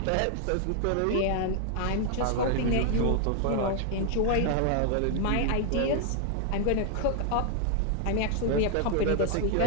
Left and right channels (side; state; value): both; different; correlation 0.00